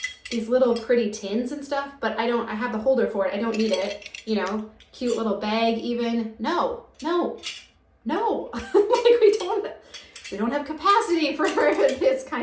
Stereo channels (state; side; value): identical; both; correlation 1.00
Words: these little pretty tins and stuff, but I have the holder for it. I don't need it, you know, cute little bag even. No. Like we don't have capacity for this